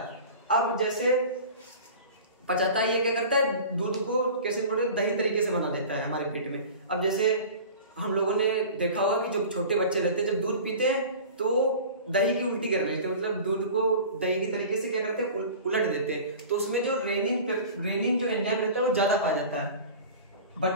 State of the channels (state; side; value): inverted; both; correlation -0.38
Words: अब जैसे पचाता है, ये क्या करता है, दूध को केसीन प्रोटीन दही तरीके से बना देता है हमारे पेट में। अब जैसे हम लोगों ने देखा होगा कि जो छोटे बच्चे रहते हैं जब दूध पीते हैं तो दही की उल्टी कर लेते हैं, मतलब दूध को दही की तरीके से क्या करते हैं, उलट देते हैं। तो उसमें जो रेनिन जो एंजाइम रहता है वो ज्यादा पाया जाता है,